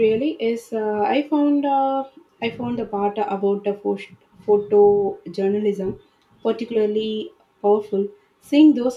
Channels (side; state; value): both; identical; correlation 1.00